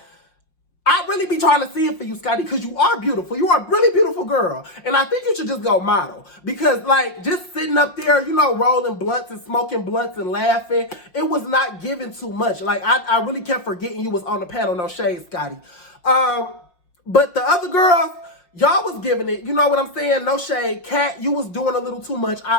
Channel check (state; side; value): late; right; 5.6 ms